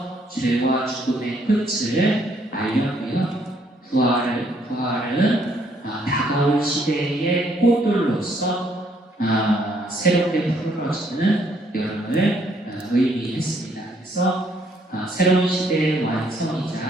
죄와 죽음의 끝을 알렸고요. 부활은 다가올 시대의 꽃들로서 새롭게 푸르러지는 여름을 의미했습니다. 그래서 새로운 시대의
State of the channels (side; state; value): both; normal; correlation 0.68